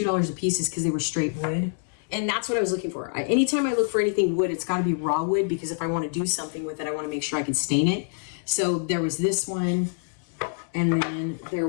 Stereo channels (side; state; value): right; silent; digital silence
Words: a piece is because they were straight wood. And that's what I was looking for. Anytime I look for anything wood, it's got to be raw wood, because if I want to do something with it, I want to make sure I can stain it. So there was this one, and then there